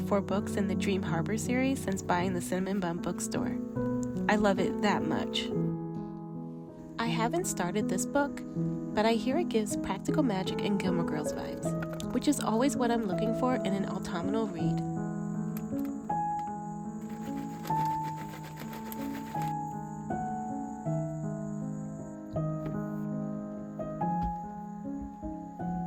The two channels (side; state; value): both; identical; correlation 1.00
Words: books in the Dream Harbor series since buying the Cinnamon Bun bookstore. I love it that much. I haven't started this book, but I hear it gives Practical Magic and Gilmore Girls vibes, which is always what I'm looking for in an autumnal read.